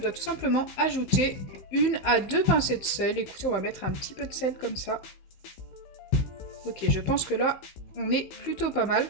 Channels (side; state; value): right; late; 15 ms